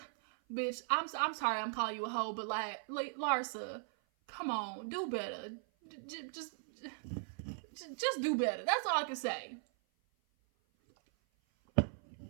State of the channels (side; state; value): left; silent; 52 dB below the other